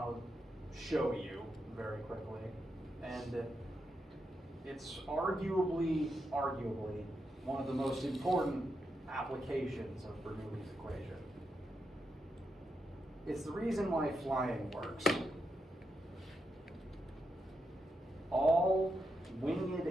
to show you very quickly, and it's arguably one of the most important applications of Bernoulli's equation. It's the reason why flying works. All winged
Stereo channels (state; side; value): normal; both; correlation 0.84